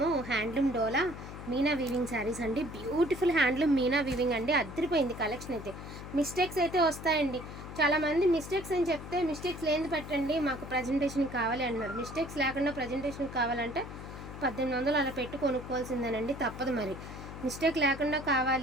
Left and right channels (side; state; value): left; noise; hum, 11 dB below the sound